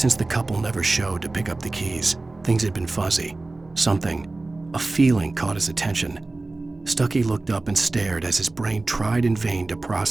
the couple never showed to pick up the keys, things had been fuzzy. Something, a feeling caught his attention. Stucky looked up and stared as his brain tried in vain to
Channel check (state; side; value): quieter; left; 3.2 dB